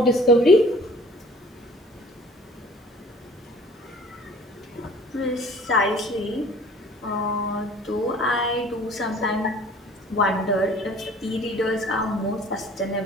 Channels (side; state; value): both; normal; correlation 0.50